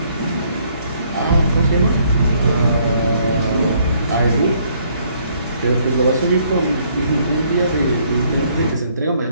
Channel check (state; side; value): inverted; both; correlation -0.66